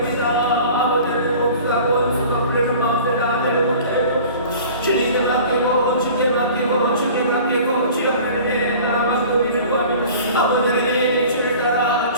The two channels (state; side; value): inverted; both; correlation -0.44